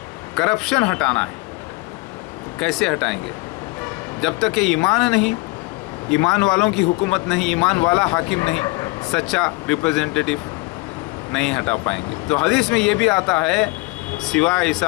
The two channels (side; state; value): right; quieter; 24.5 dB